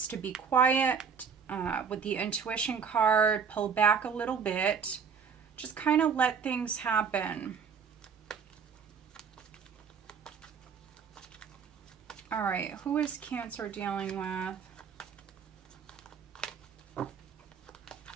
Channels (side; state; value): left; quieter; 6.4 dB